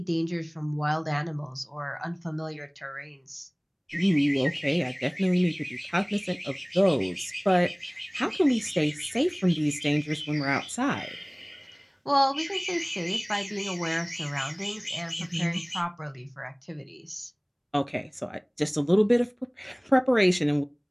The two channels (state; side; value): identical; both; correlation 1.00